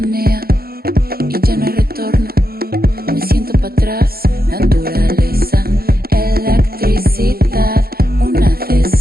y ya no hay retorno. Me siento para atrás, naturaleza, electricidad, una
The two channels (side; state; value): left; late; 0.44 ms